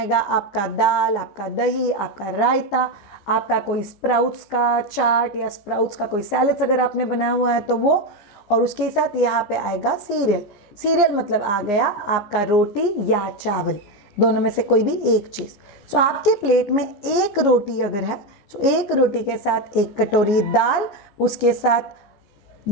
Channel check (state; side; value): late; right; 15 ms